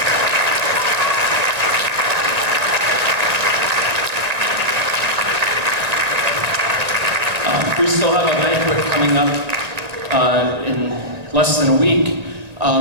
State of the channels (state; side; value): late; left; 1.9 ms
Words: We still have a banquet coming up in less than a week,